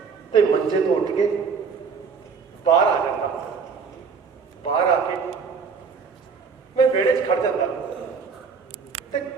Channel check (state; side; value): quieter; left; 5.5 dB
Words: ਤੇ ਮੰਜੇ ਤੋਂ ਉੱਠ ਕੇ ਬਾਹਰ ਆ ਜਾਂਦਾ। ਬਾਹਰ ਆ ਕੇ ਮੈਂ ਵਿਹੜੇ 'ਚ ਖੜ ਜਾਂਦਾ ਤੇ